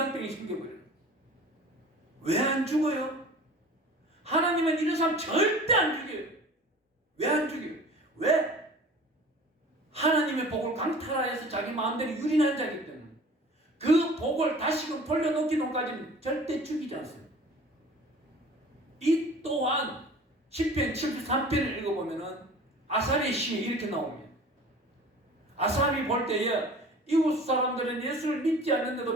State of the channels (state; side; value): normal; both; correlation 0.43